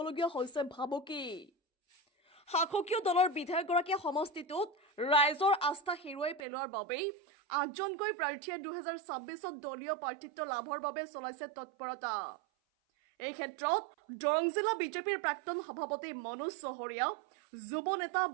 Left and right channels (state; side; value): drops out; left; at 6.5 s